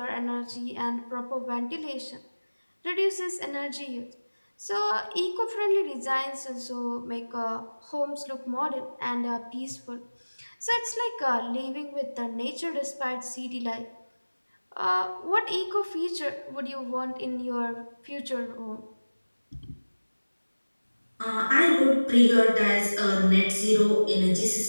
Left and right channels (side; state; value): both; inverted; correlation -1.00